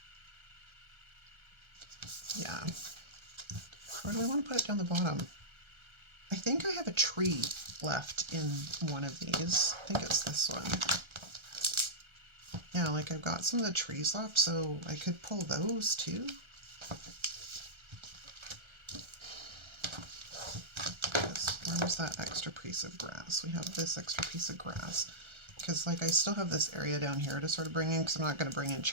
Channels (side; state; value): left; late; 1.3 ms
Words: Yeah. Or do I want to put it down the bottom? I think I have a tree left in one of these. I think it's this one. Yeah, like I've got some of the trees left, so I could pull those too. Where was that extra piece of grass? We have this extra piece of grass. Because, like, I still have this area down here to sort of bring in, because I'm not going to bring in